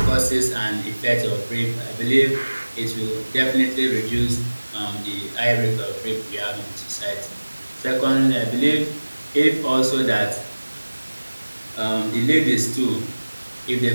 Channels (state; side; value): inverted; both; correlation -1.00